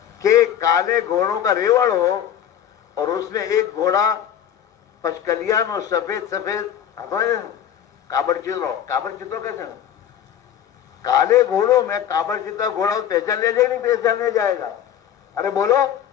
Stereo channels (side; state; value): right; quieter; 9.8 dB